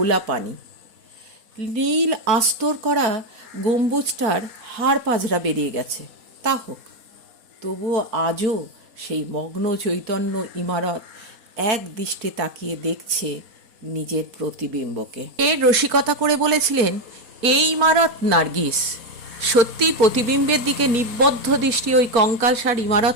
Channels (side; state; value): left; late; 4.2 ms